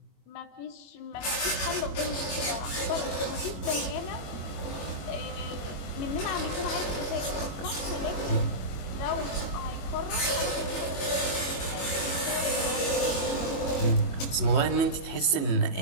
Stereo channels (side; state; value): right; late; 21 ms